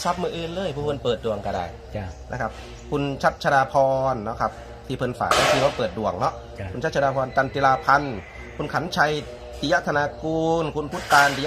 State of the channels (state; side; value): identical; both; correlation 1.00